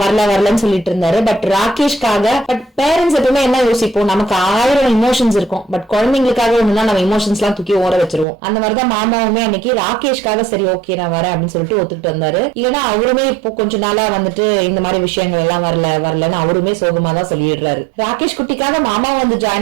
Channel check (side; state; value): left; drops out; at 8.2 s